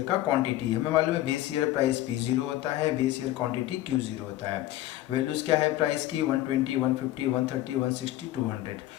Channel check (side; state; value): right; quieter; 15.0 dB